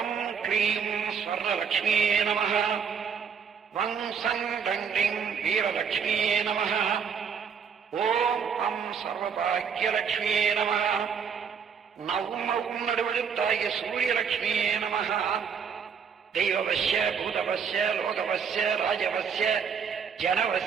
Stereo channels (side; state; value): left; quieter; 6.7 dB